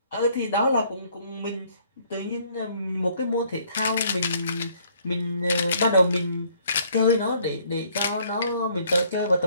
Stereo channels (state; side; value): inverted; both; correlation -0.63